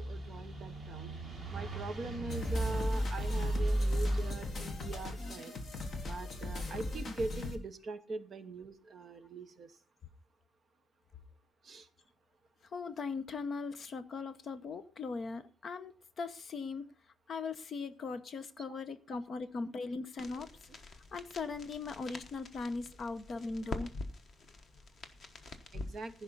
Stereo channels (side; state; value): both; normal; correlation 0.85